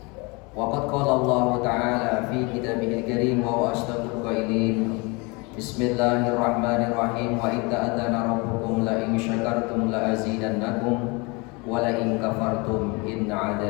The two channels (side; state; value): right; quieter; 28.1 dB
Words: وقد قال الله تعالى في كتابه الكريم وهو أصدق القائلين بسم الله الرحمن الرحيم وإذ تأذن ربكم لئن شكرتم لأزيدنكم ولئن كفرتم إن